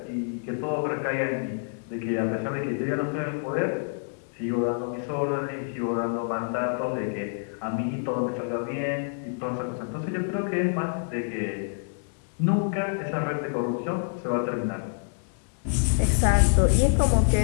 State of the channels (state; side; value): silent; right; digital silence